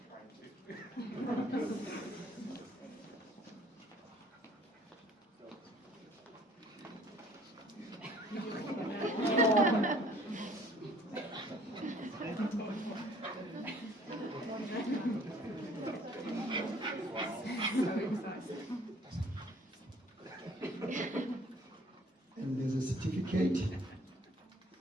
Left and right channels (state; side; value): normal; both; correlation 0.56